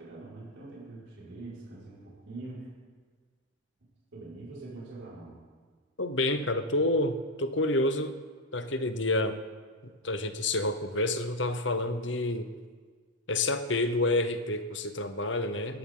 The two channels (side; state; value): both; normal; correlation 0.01